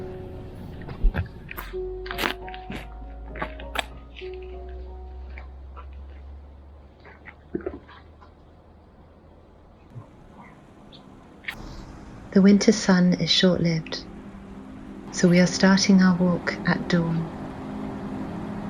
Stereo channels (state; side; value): identical; both; correlation 1.00